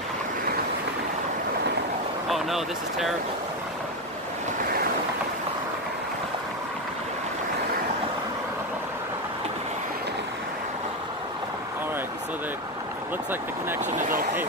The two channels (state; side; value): normal; both; correlation 0.12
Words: Oh no, this is terrible. Alright, so it looks like the connection is okay